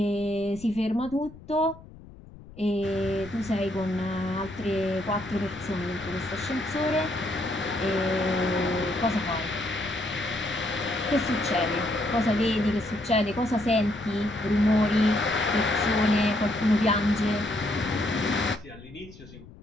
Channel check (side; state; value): left; noise; rumble, 19 dB below the sound